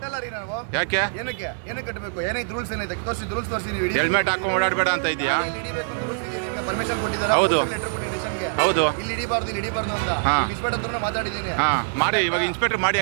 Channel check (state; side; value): silent; left; digital silence